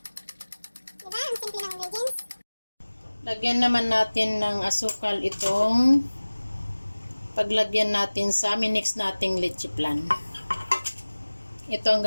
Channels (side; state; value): both; inverted; correlation -1.00